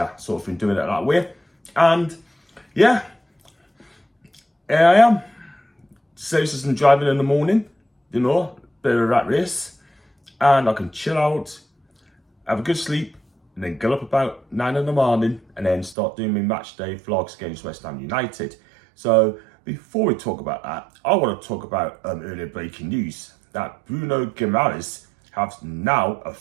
sort of been doing it that way. And yeah, here I am. Citizen driving in the morning, you know, bit of a rat race, and I can chill out, have a good sleep, and then get up about 9 in the morning and then start doing my match day vlogs against West Ham United. So before we talk about that, I want to talk about earlier breaking news that Bruno G has now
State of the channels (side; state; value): left; drops out; at 16.0 s